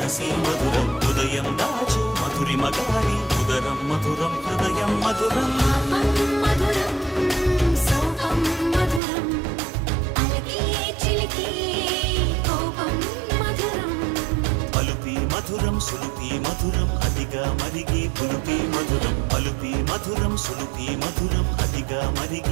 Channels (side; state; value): left; drops out; at 9.0 s